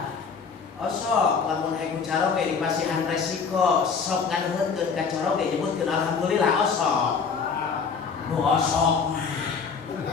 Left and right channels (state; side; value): quieter; right; 5.6 dB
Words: Osok lamun aya caro ge dipasihan resiko, sok nganuhkeun ka caro ge nyebutkeun alhamdulillah osok. Nu osok.